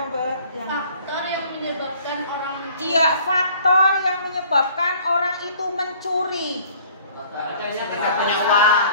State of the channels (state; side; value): inverted; both; correlation -0.55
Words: Mbak? Faktor yang menyebabkan orang mencuri. Iya, faktor yang menyebabkan orang itu mencuri. Tidak punya uang.